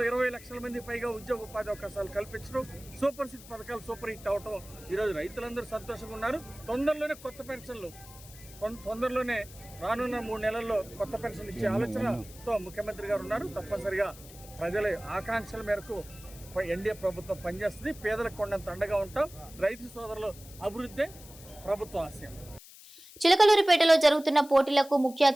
20 లక్షల మంది పైగా ఉద్యోగ ఉపాధి అవకాశాలు కల్పించడం, సూపర్ సిక్స్ పథకాలు సూపర్ హిట్ అవటం, ఈరోజు రైతులందరూ సంతోషంగా ఉన్నారు. తొందరలోనే కొత్త పెన్షన్లు, తొందరలోనే రానున్న 3 నెలల్లో కొత్త పెన్షన్లు ఇచ్చే ఆలోచనతో ముఖ్యమంత్రి గారు ఉన్నారు. తప్పనిసరిగా ప్రజల ఆకాంక్షల మేరకు ఎన్డీఏ ప్రభుత్వం పనిచేస్తుంది. పేదలకు కొండంత అండగా ఉంటాం. రైతు సోదరులు అభివృద్ధి ప్రభుత్వ ఆశయం. చిలకలూరిపేటలో జరుగుతున్న పోటీలకు ముఖ్య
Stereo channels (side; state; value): left; noise; hiss, 19 dB below the sound